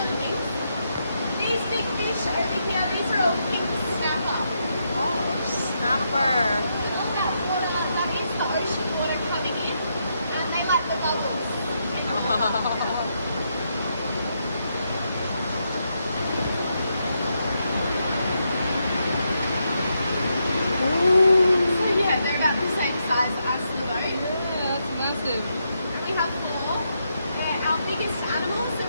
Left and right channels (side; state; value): both; inverted; correlation -0.81